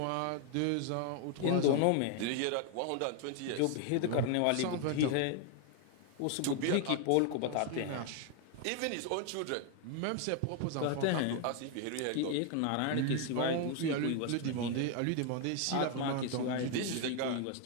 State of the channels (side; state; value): both; different; correlation 0.00